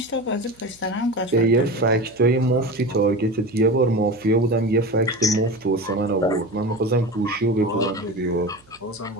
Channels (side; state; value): right; noise; hum, 30 dB below the sound